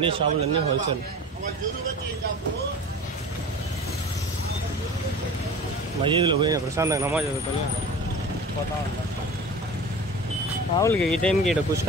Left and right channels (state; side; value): normal; both; correlation 0.37